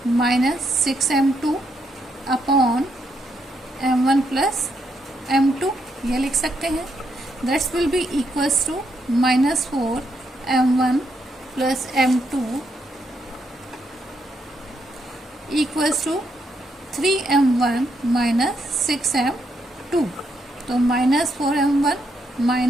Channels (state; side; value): normal; both; correlation 0.78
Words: minus 6m2 upon m1 plus m2 ये लिख सकते हैं। That's will be equals to -4 m1 plus m2 equals to 3m1 minus 6m2। तो -4m1